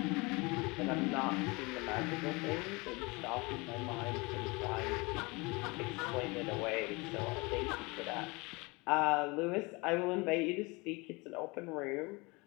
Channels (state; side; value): quieter; right; 26.2 dB